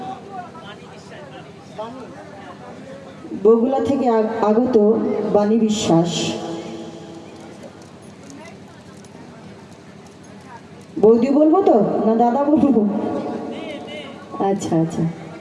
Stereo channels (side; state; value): both; identical; correlation 1.00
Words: বগুলা থেকে আগত বাণী বিশ্বাস। বৌদি বলবো তো না দাদা বলবো? আচ্ছা আচ্ছা,